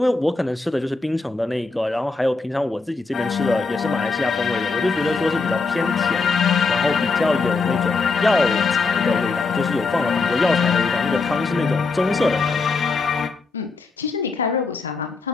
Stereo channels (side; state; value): right; quieter; 4.0 dB